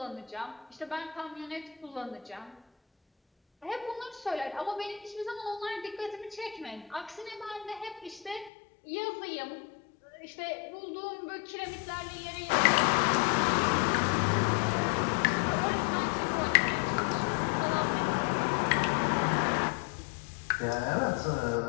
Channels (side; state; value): right; drops out; at 8.5 s